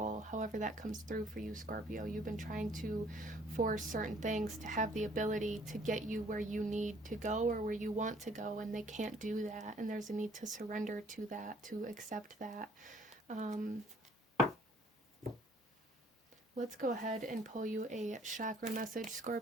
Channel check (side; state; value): both; normal; correlation 0.59